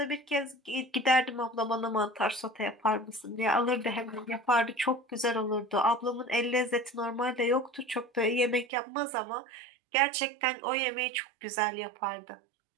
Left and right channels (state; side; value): drops out; left; at 8.7 s